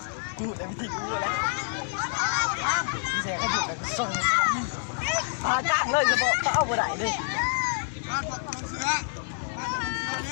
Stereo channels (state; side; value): silent; right; digital silence